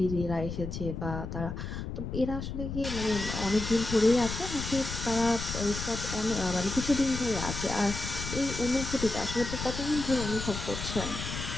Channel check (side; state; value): left; noise; rumble, 6 dB below the sound